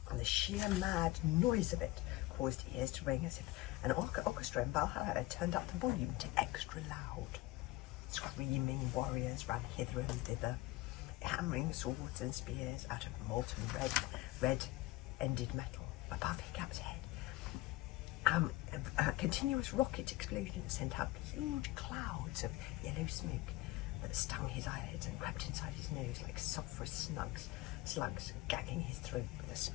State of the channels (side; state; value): right; quieter; 19.1 dB